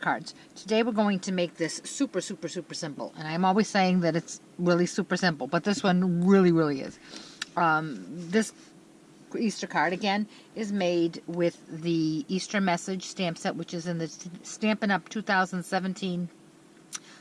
Today we're going to make this super simple, and I'm always saying that it's really super simple, but this one really is. This Easter card again is made with the Easter message stamp set, which is in the Stampin' Up! 2017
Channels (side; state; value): both; identical; correlation 1.00